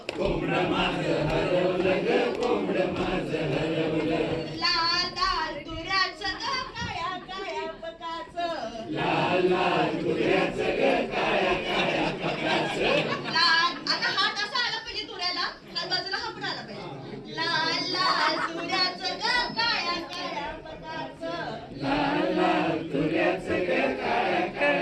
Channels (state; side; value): identical; both; correlation 1.00